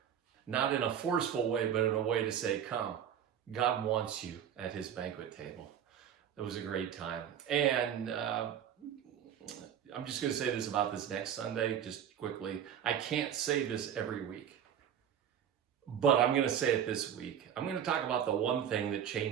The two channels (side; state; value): left; quieter; 9.2 dB